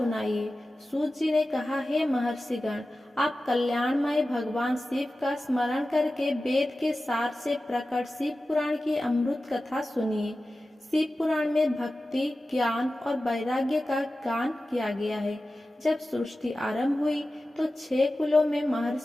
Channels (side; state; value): both; normal; correlation 0.95